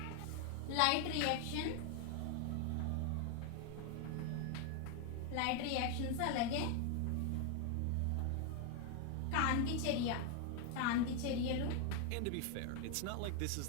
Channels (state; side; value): different; both; correlation 0.01